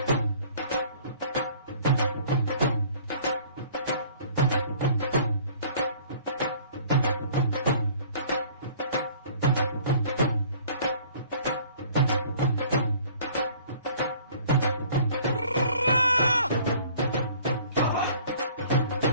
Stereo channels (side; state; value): both; inverted; correlation -0.51